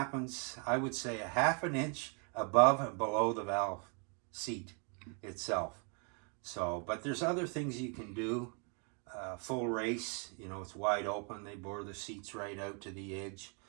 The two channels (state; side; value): quieter; left; 38.1 dB